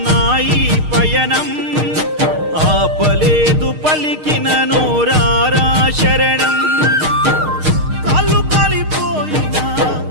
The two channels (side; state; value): left; late; 6.5 ms